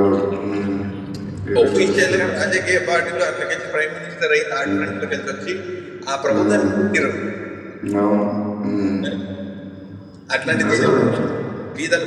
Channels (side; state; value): both; identical; correlation 1.00